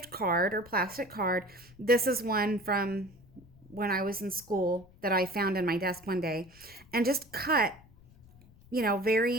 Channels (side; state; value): left; noise; rumble, 25 dB below the sound